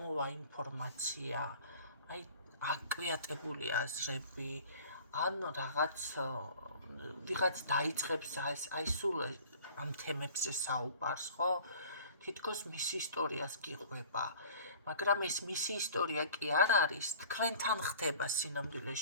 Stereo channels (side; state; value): both; inverted; correlation -0.46